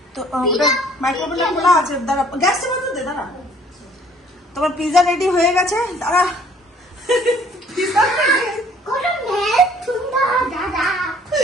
তো মাইক্রোওভেনটা খোলা আছে, দাঁড়া গ্যাসটা বন্ধ দে, দাঁড়া। তোমার পিজা রেডি হয়ে গেছে, দাঁড়া।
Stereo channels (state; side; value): normal; both; correlation 0.57